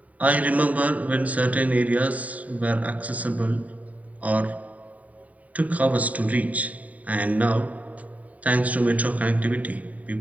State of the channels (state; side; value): late; left; 0.071 ms